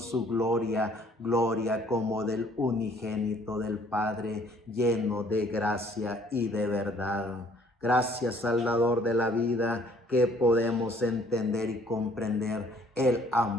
su gloria, gloria como del unigénito del Padre, lleno de gracia y de verdad. Gracias, Salvador de la vida, que podemos entender y comprender el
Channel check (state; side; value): normal; both; correlation 0.59